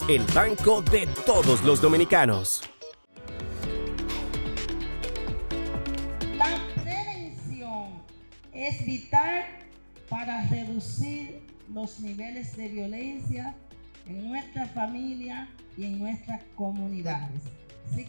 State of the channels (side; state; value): both; inverted; correlation -1.00